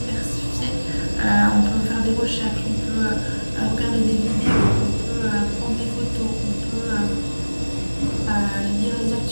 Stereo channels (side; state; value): both; inverted; correlation -1.00